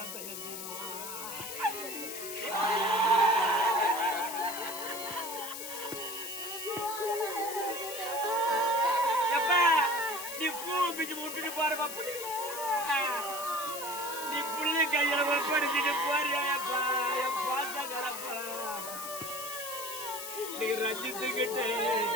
எப்ப நீ பூ பிச்சு முட்டுட்டு பாருப்பா நீ புள்ளி கையில ஒப்படைச்சிட்டு போறியாப்பா என் பாசகரப்பா நீ ரஞ்சித்துக்கிட்டே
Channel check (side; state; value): left; noise; hiss, 8 dB below the sound